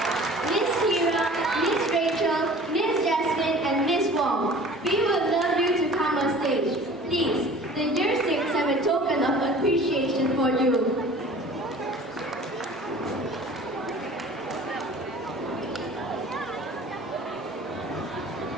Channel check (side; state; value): both; normal; correlation 0.45